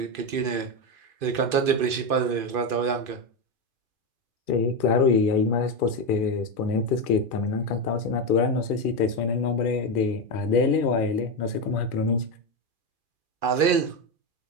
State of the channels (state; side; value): late; left; 2.5 ms